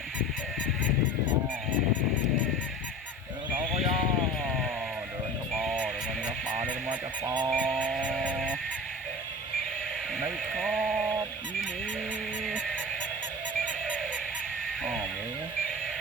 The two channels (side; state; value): both; normal; correlation 0.35